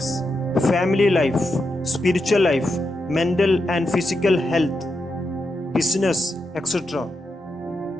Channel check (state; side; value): normal; both; correlation 0.85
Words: family life, spiritual life, mental and physical health, business, etc.